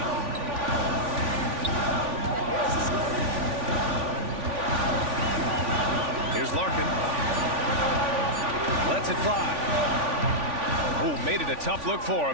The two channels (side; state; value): left; late; 3.5 ms